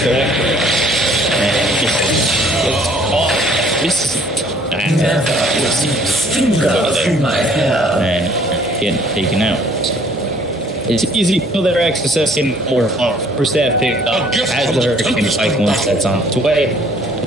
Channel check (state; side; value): normal; both; correlation 0.58